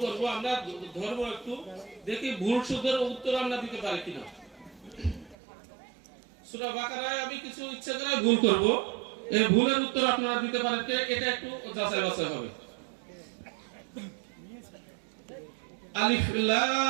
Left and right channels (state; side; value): drops out; left; at 5.4 s